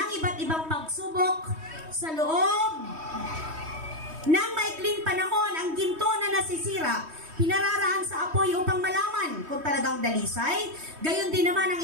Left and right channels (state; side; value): late; left; 3.2 ms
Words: iba't ibang pagsubok sa loob ng maikling panahon. Ang ginto na nasisira, pinararaan sa apoy upang malaman kung talagang dalisay. Gayon din naman ang